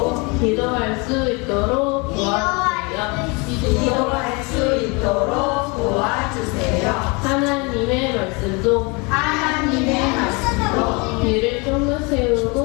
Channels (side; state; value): right; quieter; 29.2 dB